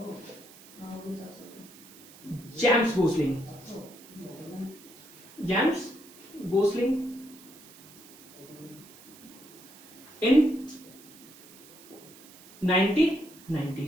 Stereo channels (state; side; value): noise; right; hiss, 21 dB below the sound